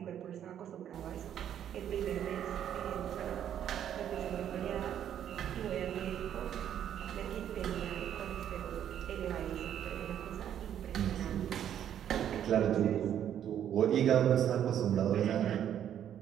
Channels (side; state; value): left; quieter; 10.0 dB